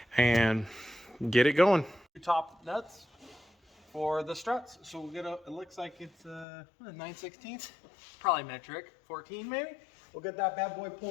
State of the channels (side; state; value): right; drops out; at 6.5 s